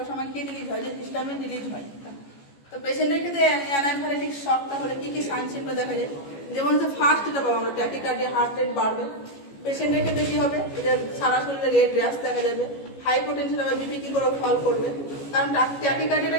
সময় কি রিলিজ হয়, যে হিস্টামিন রিলিজ হয়। তো পেশেন্টের ক্ষেত্রে অ্যানাফাইলেটিক শকটা হলে কি কি সাইন সিম্পটম দেখা যায়, যেমন হচ্ছে ফার্স্ট যেটা পাবো আমরা ট্যাকিকার্ডিয়া, হার্ট রেট বাড়বে। পেশেন্টের ক্ষেত্রে কি হবে, যে সারা শরীরে রেড র্যাশ দেখা যাবে, হাইপোটেনশন হবে, বিপি কি করে ফল করবে। কারণ ট্যাকিকার্ডিয়াটা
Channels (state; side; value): late; right; 14 ms